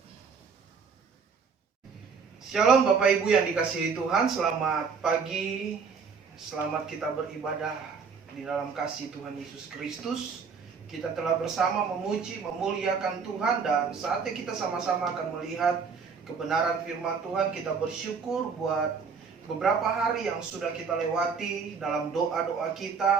Shalom Bapak Ibu yang dikasihi Tuhan, selamat pagi, selamat kita beribadah di dalam kasih Tuhan Yesus Kristus. Kita telah bersama memuji, memuliakan Tuhan, dan saatnya kita sama-sama akan melihat kebenaran firman Tuhan. Kita bersyukur buat beberapa hari yang sudah kita lewati dalam doa-doa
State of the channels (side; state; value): left; quieter; 5.6 dB